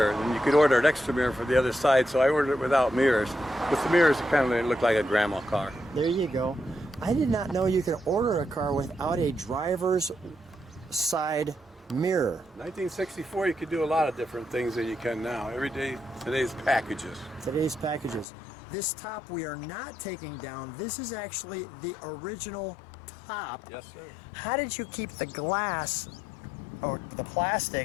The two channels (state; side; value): drops out; right; at 18.2 s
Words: And you could order an extra mirror for the other side, so I ordered it without mirrors. With the mirrors, it kind of looked like a grandma car. There you go. I did not know you could order a car without a driver's side mirror. 1964, you could do a lot of different things than you can now. Every day, today's packages. Today's packages. This top we are not taking down. This is actually the original top. Yes, sir. How did you keep the glass or the